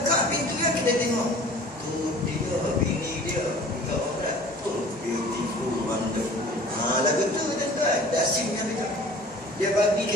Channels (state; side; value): normal; both; correlation 0.46